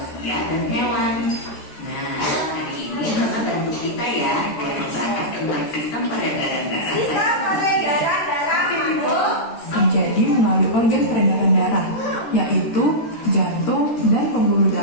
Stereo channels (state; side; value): late; right; 13 ms